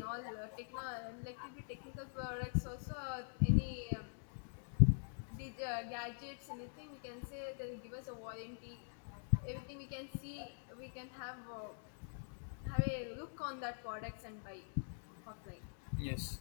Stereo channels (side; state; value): right; silent; digital silence